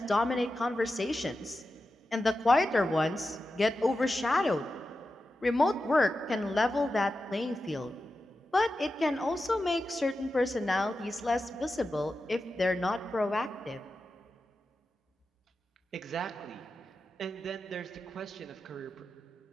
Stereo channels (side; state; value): both; normal; correlation 0.91